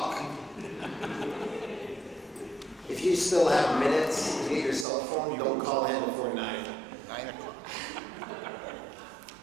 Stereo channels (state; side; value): drops out; left; at 4.9 s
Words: If you still have minutes to get your cell phone, don't call in before 9. 9 o'clock.